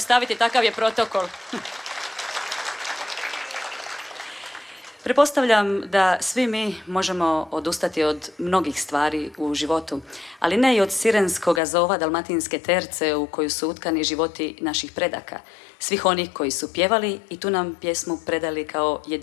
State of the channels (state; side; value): drops out; right; at 11.6 s